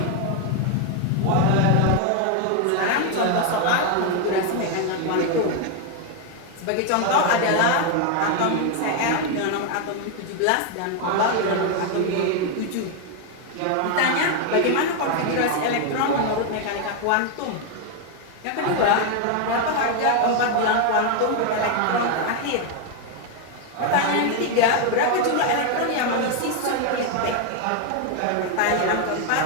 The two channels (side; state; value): both; different; correlation 0.01